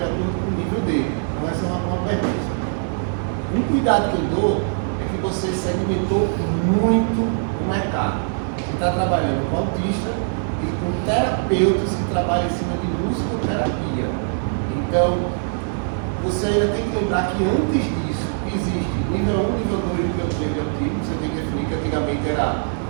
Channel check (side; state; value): left; silent; 58 dB below the other